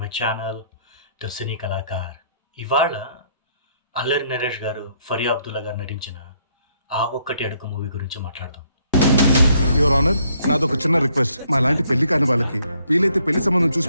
my channel the Cine Kalakar. ఇవాళ అల్లరి నరేష్ గారు, ఫరియా అబ్దుల్లా గారు నటించిన 'ఆ ఒక్కటి అడుగు' మూవీ గురించి మాట్లాడదాం. యువర్ ఆనర్, నాదొక చిన్న రిక్వెస్ట్. మా లాంటి పెళ్లి కాని వాళ్ళకి వీలైతే పెళ్లి సంబంధం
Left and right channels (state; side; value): inverted; both; correlation -0.69